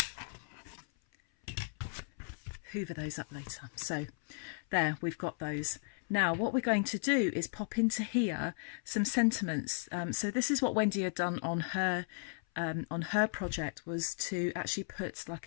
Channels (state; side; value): silent; right; 54 dB below the other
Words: Hoover those up later. So there, we've got those. Now what we're going to do is pop into here some sentiments. So this is what Wendy had done on her project, was to actually put like